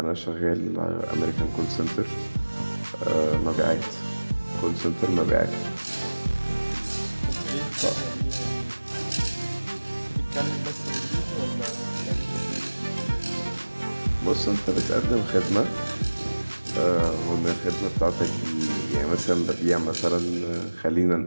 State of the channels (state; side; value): inverted; both; correlation -1.00